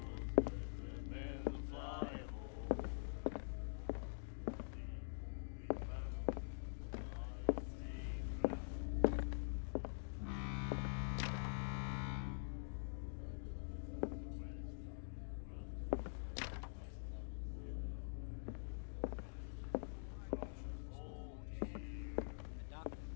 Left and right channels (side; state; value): right; silent; digital silence